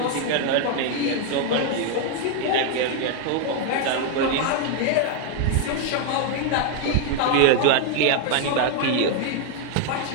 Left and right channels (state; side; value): different; both; correlation 0.00